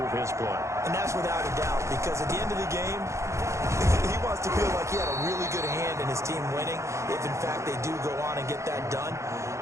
his play. And that's without a doubt, because at the end of the game, he wants to feel like he had a really good hand in his team winning, if in fact they do go on and get that done.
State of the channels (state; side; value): late; left; 0.14 ms